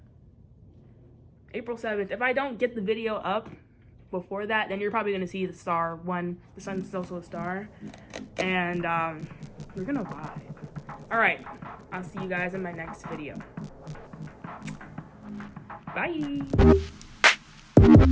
April 7th. If I don't get the video up before that, then you're probably gonna see the star one. The sun's also a star, and we're gonna vibe. All right, I'll see you guys in my next video. Bye.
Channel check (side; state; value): both; identical; correlation 1.00